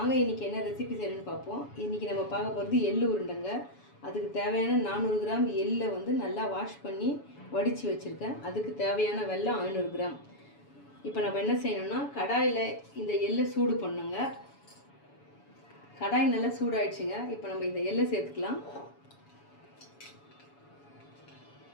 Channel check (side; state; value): right; late; 7.1 ms